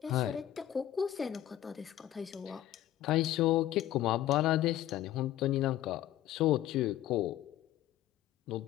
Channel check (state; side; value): quieter; right; 12.9 dB